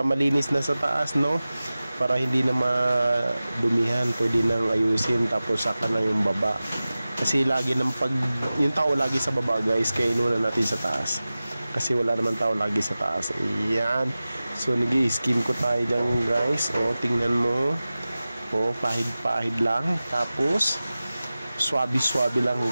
malinis na sa taas, no? Para hindi na madumihan, pwede nang ayusin. Tapos saka na yung baba. Kasi lagi ng yung tao lagi sa baba guys, kaya inuna natin sa taas. Kasi wala naman tao lagi sa taas. Ayan. So nag-i-skim coat tayo dyan guys. O, tingnan mo. O, pahid-pahid lang. Tapos swabe-swabe lang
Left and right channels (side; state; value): both; inverted; correlation -0.96